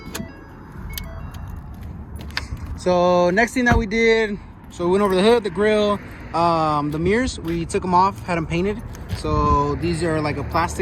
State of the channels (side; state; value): both; identical; correlation 1.00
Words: So next thing that we did, so we went over the hood, the grill, the mirrors, we took them off, had them painted. So these are like a